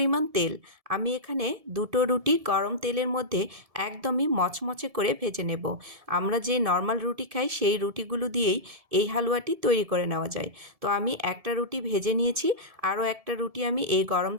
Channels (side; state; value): left; late; 1.7 ms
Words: তেল। আমি এখানে দুটো রুটি গরম তেলের মধ্যে একদমই মচমচে করে ভেজে নেব। আমরা যে নর্মাল রুটি খাই সেই রুটিগুলো দিয়েই এই হালুয়াটি তৈরি করে নেওয়া যায়। তো আমি একটা রুটি ভেজে নিয়েছি, আরও একটা রুটি আমি এই গরম